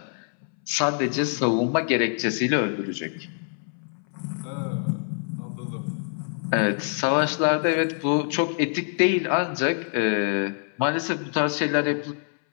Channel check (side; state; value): right; silent; 62 dB below the other